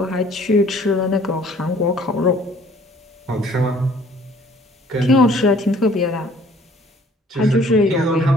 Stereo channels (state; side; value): normal; both; correlation 0.56